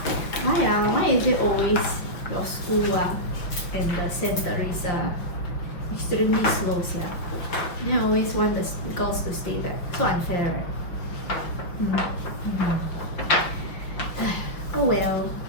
Why is it always your school and the centers extremely slow, Then I always want the girls to stay back. So unfair, right? Oh well.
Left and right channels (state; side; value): late; right; 5.7 ms